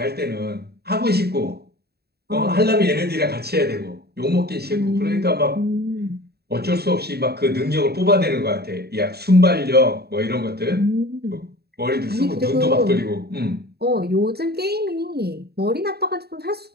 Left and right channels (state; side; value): late; left; 0.47 ms